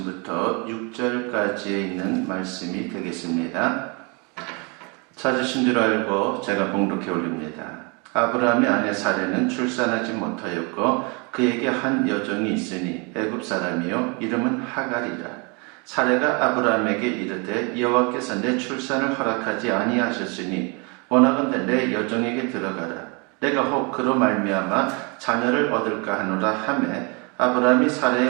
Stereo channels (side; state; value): left; quieter; 31.9 dB